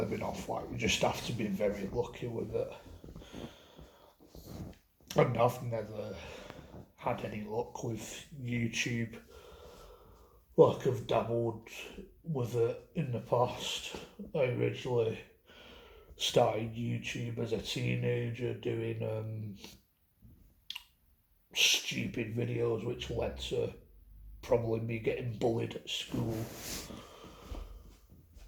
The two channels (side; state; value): both; identical; correlation 1.00